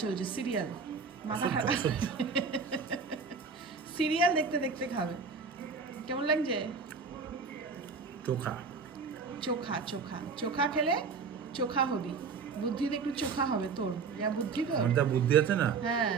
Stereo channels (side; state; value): left; quieter; 5.0 dB